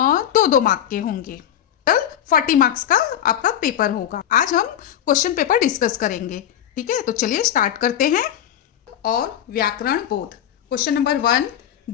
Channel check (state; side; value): quieter; right; 10.5 dB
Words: मार्क के होंगे। टोटल 40 मार्क्स का आपका पेपर होगा। आज हम क्वेश्चन पेपर डिस्कस करेंगे, ठीक है। तो चलिए स्टार्ट करते हैं। और व्याकरण बोध क्वेश्चन नंबर 1,